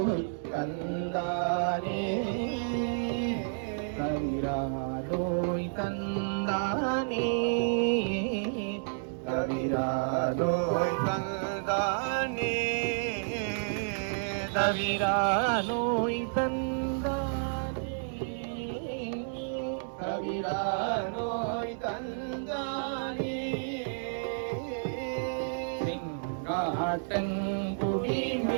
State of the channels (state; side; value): silent; left; digital silence